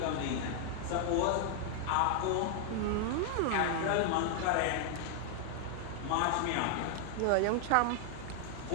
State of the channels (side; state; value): both; different; correlation 0.00